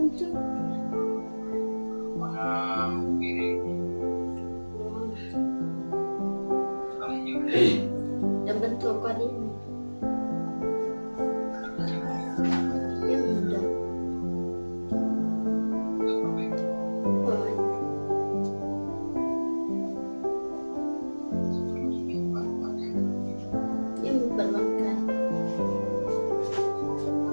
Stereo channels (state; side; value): inverted; both; correlation -1.00